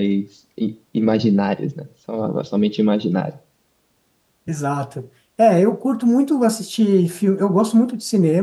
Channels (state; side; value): identical; both; correlation 1.00